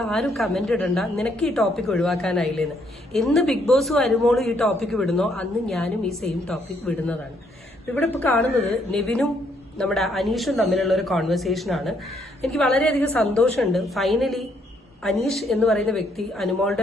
ആരും കമന്റ് ഇടണ്ട, നിനക്ക് ഈ ടോപ്പിക് ഒഴിവാക്കാനായില്ലേന്ന്. എന്ന് ബിഗ് ബോസും അനുമോളും ഈ ടോപ്പിക് വിടുന്നോ അന്ന് ഞാനും ഈ സെയിം ടോപ്പിക് വിടുന്നതാണ്. ഇവിടെ ഇപ്പൊ കാണുന്നത് നെവിനും നമ്മുടെ അനീഷും തമ്മിലുള്ള ഒരു കോൺവെർസേഷൻ ആണ്. എനിക്ക് വളരെയധികം സന്തോഷമുണ്ട്. ഫൈനലി അനീഷ് എന്ന് പറയുന്ന വ്യക്തി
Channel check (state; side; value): normal; both; correlation 0.71